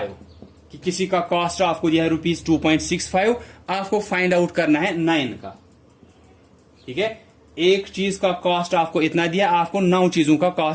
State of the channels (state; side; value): identical; both; correlation 1.00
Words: कि किसी का कॉस्ट आपको दिया है ₹2.65, आपको फाइंड आउट करना है 9 का। ठीक है, एक चीज का कॉस्ट आपको इतना दिया, आपको 9 चीजों का